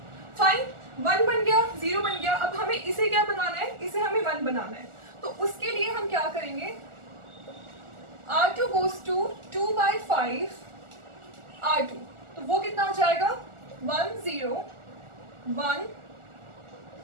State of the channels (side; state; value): left; late; 1.4 ms